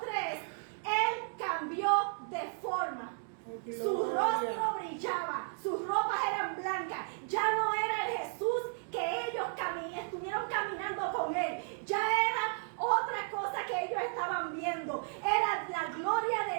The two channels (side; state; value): left; silent; 55 dB below the other